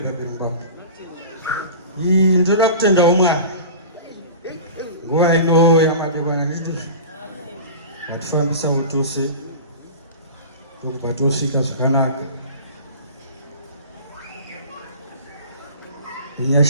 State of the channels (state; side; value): inverted; both; correlation -0.36